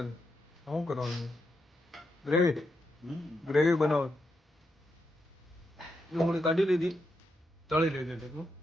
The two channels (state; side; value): normal; both; correlation 0.84